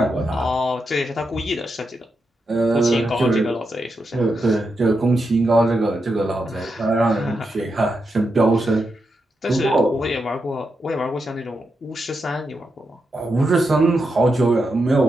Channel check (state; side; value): normal; both; correlation 0.85